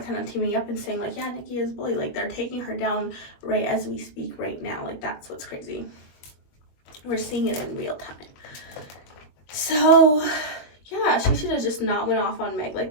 kind of teaming up and saying like, yeah, Nicki is bully. Like, they're taking her down right as we speak right now. Like, that's what's crazy. We're seeing it in real time. So yeah, she should have just not went off on Meg like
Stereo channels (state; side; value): late; right; 21 ms